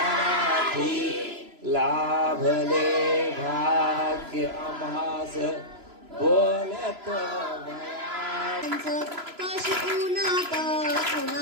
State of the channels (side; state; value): left; late; 3.0 ms